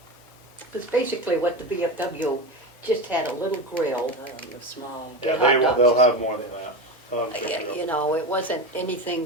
Because basically what the VFW just had a little grill. The small, Yeah, hot dogs. they'll have more than that. They'll have chicken You grills. know, it wasn't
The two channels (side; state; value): both; normal; correlation 0.21